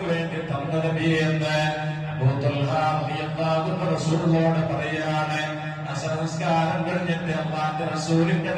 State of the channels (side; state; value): both; identical; correlation 1.00